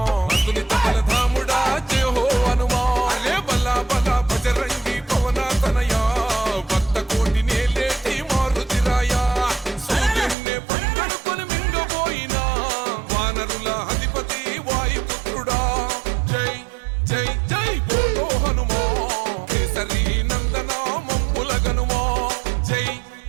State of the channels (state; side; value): drops out; left; at 10.4 s